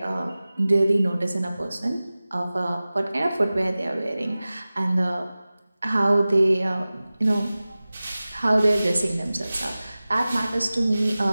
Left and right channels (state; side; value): inverted; both; correlation -0.97